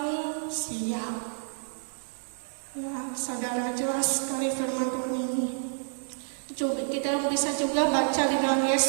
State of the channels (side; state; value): left; silent; 59 dB below the other